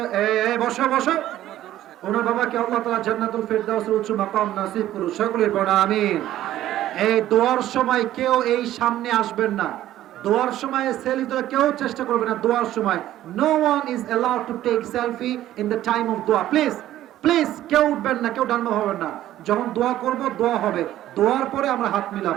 বসো বসো। ওনার বাবাকে আল্লাহ তাআলা জান্নাতুল ফেরদাউসের উচ্চ মাকাম নসিব করুন। সকলে পড়া আমিন। এই দোয়ার সময় কেউ এই সামনে আসবেন না। দোয়ার সময় সেলফি তোলা কেউ চেষ্টা করবে না। দোয়ার সময় no one is allowed to take selfie in the time of দোয়া। প্লিজ প্লিজ, কেউ উঠবেন না, কেউ ডানবা হবেন না। যখন দোয়া করব, দোয়া হবে, দোয়ার পরে আমরা হাত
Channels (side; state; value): left; quieter; 13.4 dB